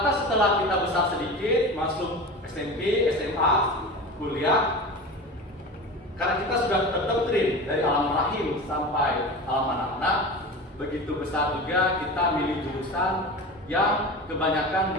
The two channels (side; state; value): both; normal; correlation 0.30